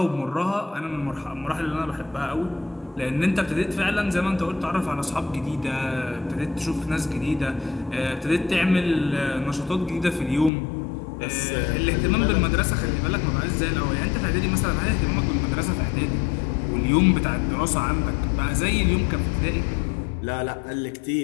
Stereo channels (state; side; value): drops out; right; at 10.5 s